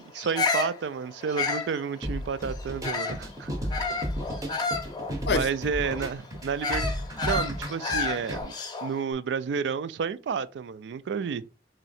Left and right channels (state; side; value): normal; both; correlation 0.08